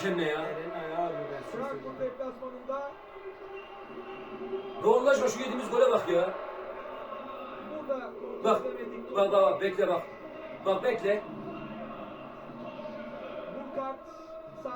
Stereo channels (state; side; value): identical; both; correlation 1.00